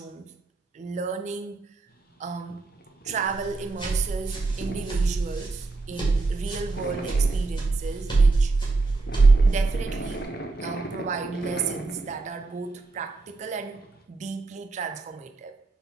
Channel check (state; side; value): quieter; left; 3.6 dB